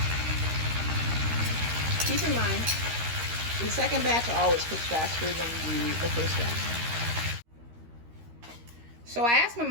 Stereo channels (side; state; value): left; late; 13 ms